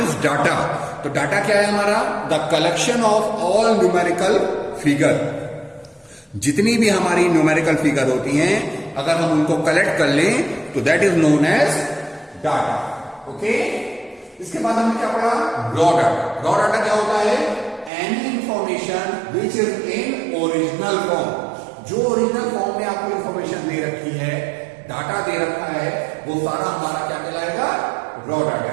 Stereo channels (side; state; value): left; drops out; at 17.9 s